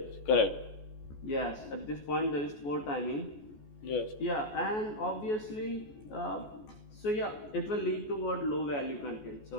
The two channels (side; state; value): right; late; 14 ms